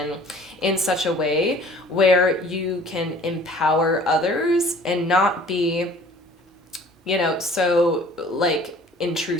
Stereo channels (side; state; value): both; normal; correlation 0.51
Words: in such a way where you can empower others and not be, you know, so like